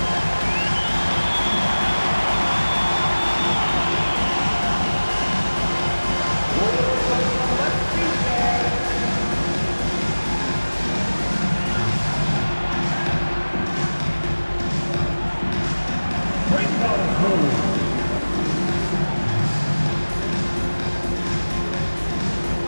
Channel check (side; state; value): both; inverted; correlation -1.00